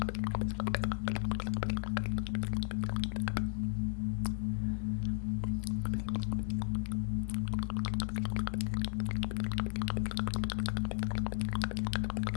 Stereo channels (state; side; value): silent; right; digital silence